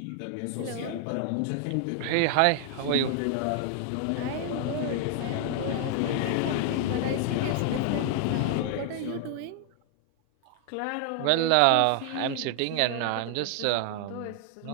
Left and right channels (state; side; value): different; both; correlation 0.00